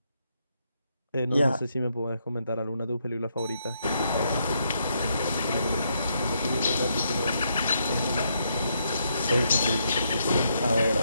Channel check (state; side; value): inverted; both; correlation -0.77